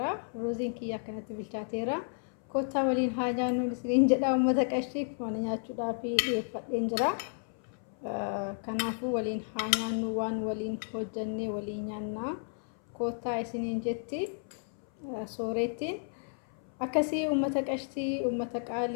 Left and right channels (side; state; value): right; silent; 56 dB below the other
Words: Ruuziin kiyya akkanatti bilchaateera. Kottaa waliin haa nyaannu isiniin jedha uummata qashii mana nyaachuudhaaf dhiyeeffadheen jira. Kanaafuu waliin haa nyaannu waan waliin hojjannee waliin nyaannaa. Kottaa isiniin jetti soorettiin. akkasii uummata qashtii uummata